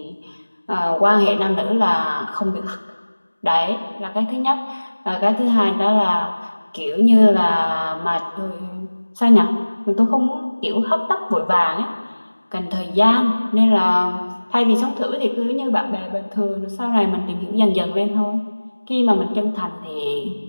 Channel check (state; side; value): inverted; both; correlation -1.00